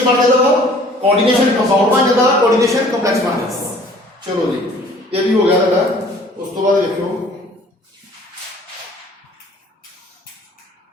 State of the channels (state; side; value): normal; both; correlation 0.53